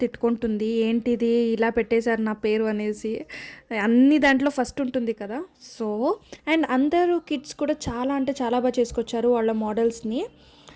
తిట్టుకుంటుంది, ఏంటిది ఇలా పెట్టేశారు నా పేరు అనేసి. అన్ని దాంట్లో ఫస్ట్ ఉంటుంది కదా. సో అండ్ అందరూ కిడ్స్ కూడా చాలా అంటే చాలా బాగా చేసుకొచ్చారు వాళ్ళ మోడల్స్ని,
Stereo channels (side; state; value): both; identical; correlation 1.00